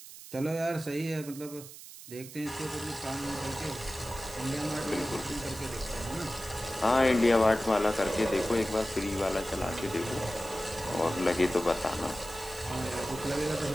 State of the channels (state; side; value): noise; right; hiss, 15 dB below the sound